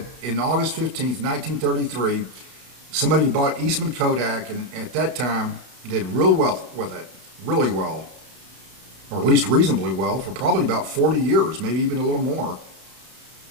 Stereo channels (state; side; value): late; left; 32 ms